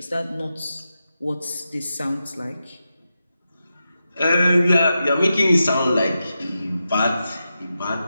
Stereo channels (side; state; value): both; inverted; correlation -0.89